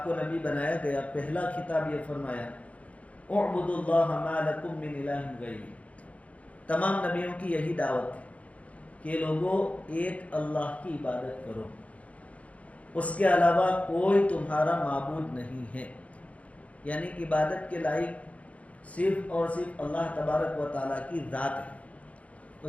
کو نبی بنایا گیا، پہلا خطاب یہ فرمایا، اعبدوا اللہ ما لکم من الہ غیرہ۔ تمام نبیوں کی یہی دعوت ہے کہ لوگوں ایک اللہ کی عبادت کرو، اس کے علاوہ کوئی تمہارا معبود نہیں ہے، یعنی عبادت کے لائق صرف اور صرف اللہ تبارک و تعالیٰ کی ذات ہے۔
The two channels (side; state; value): right; late; 0.066 ms